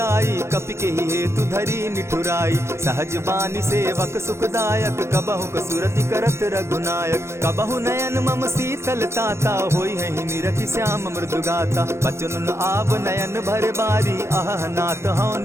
कपि के ही हेतु धरी निठुराई। सहज बानी सेवक सुखदायक, कबहु कसुरति करत रघुनायक। कबहु नयन मम शीतल ताता, होई है निरखि श्याम मृदु गाता। बचन आव नयन भर बारी, आह नाथ हौ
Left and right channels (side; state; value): left; late; 0.13 ms